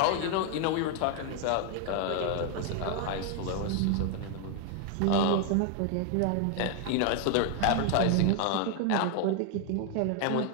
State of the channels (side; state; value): both; different; correlation 0.00